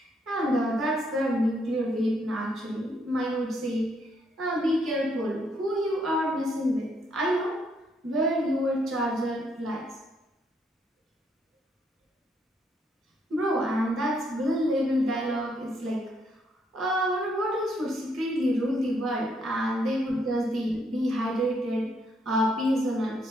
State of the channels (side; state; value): both; normal; correlation 0.73